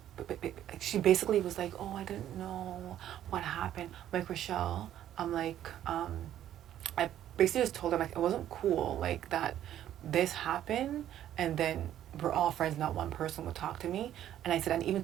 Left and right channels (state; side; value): quieter; left; 11.6 dB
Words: she basically was like, oh, I didn't know what happened. I'm like, Rochelle, I'm like, I basically just told her, like, it wasn't cool, like, that this happened, and then we're all friends, not one person would talk to me. And I said, and even